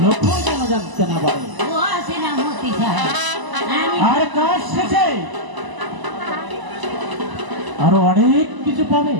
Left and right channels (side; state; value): left; late; 1.0 ms